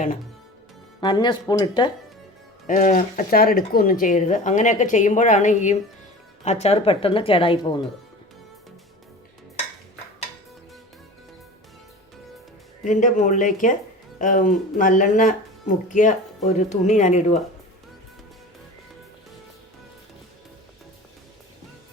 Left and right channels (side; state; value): both; normal; correlation 0.36